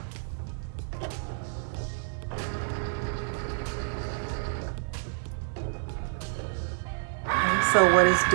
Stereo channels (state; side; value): silent; left; 59 dB below the other